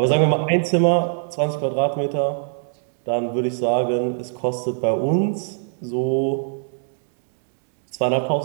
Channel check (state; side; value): silent; left; 64 dB below the other